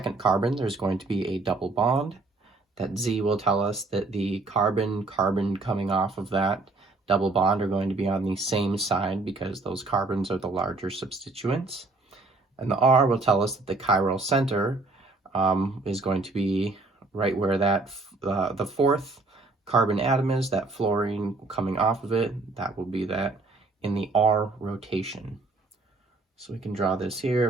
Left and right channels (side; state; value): left; quieter; 3.4 dB